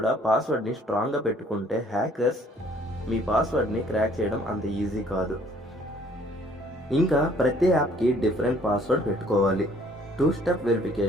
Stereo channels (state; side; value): normal; both; correlation 0.59